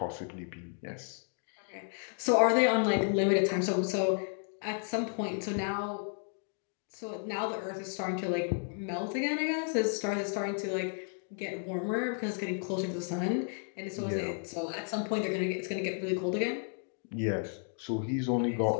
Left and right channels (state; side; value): silent; right; 56 dB below the other